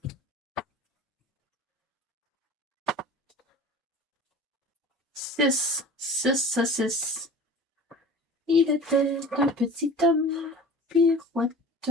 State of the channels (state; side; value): normal; both; correlation 0.39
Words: Six. Il était un petit homme, pirouette.